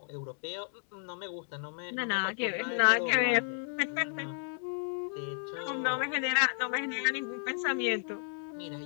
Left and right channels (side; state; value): right; silent; digital silence